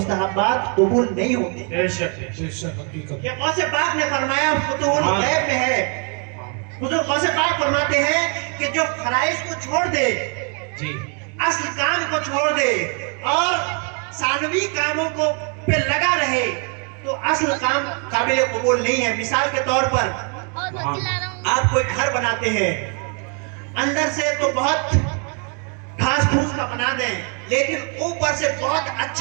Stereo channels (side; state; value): left; quieter; 38.3 dB